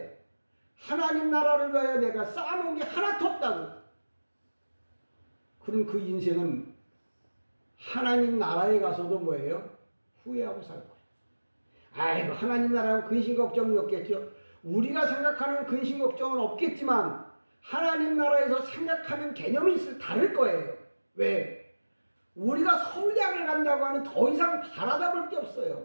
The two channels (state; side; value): inverted; both; correlation -1.00